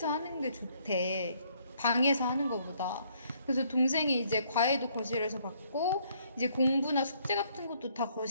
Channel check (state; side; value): inverted; both; correlation -0.67